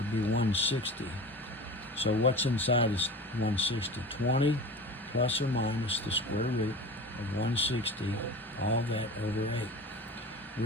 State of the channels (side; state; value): both; normal; correlation 0.34